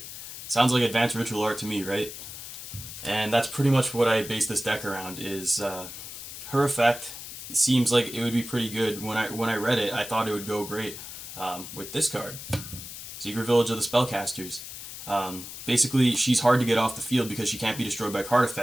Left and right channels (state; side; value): noise; left; hiss, 11 dB below the sound